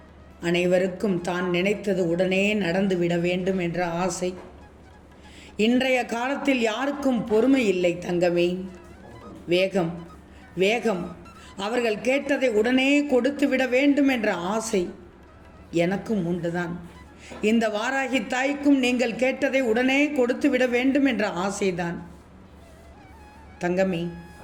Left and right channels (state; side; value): identical; both; correlation 1.00